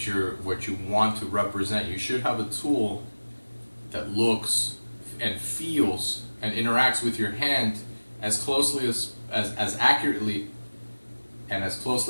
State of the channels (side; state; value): both; inverted; correlation -1.00